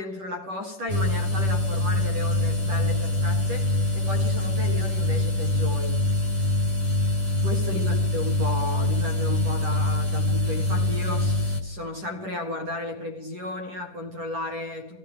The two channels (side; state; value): left; late; 10 ms